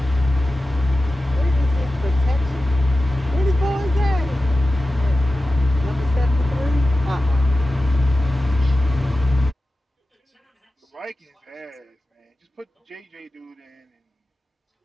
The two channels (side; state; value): both; normal; correlation 0.94